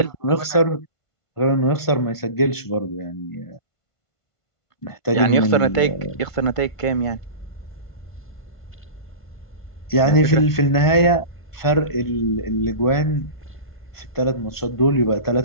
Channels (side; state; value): right; late; 1.5 ms